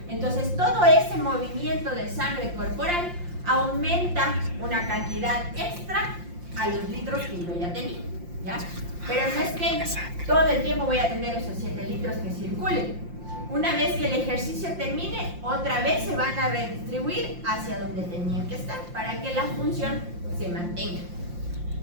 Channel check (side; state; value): left; late; 5.7 ms